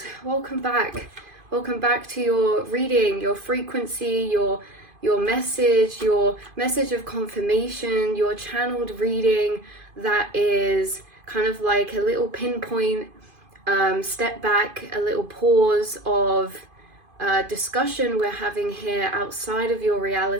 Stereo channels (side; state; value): left; late; 2.5 ms